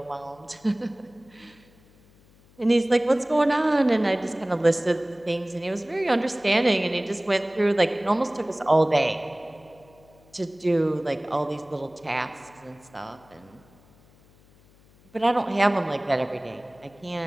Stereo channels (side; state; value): left; noise; hum, 29 dB below the sound